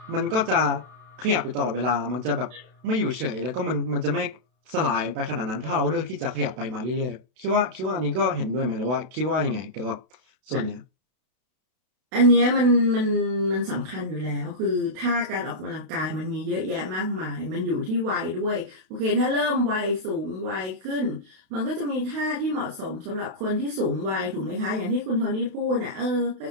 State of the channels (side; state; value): left; late; 32 ms